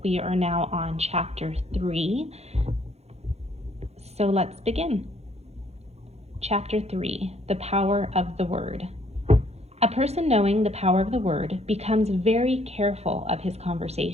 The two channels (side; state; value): left; late; 0.31 ms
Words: We are now on chapter 3. So let's begin. Chapter 3, The Power of the Word. A person knowing the power of the word becomes very careful of his